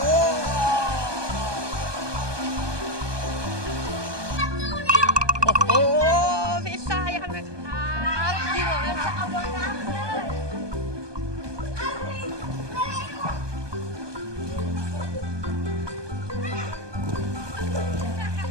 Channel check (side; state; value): left; late; 1.2 ms